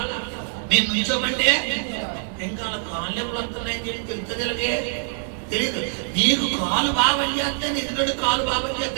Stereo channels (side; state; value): left; silent; digital silence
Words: నేను నుంచోమంటే ఇంకా కాళ్ళు ఎప్పుడు వస్తున్నాయని తెలుస్తుంది. తెలియదు. నీకు కాలు బాగా పనిచేస్తే ఎదుటి కాలు బాగా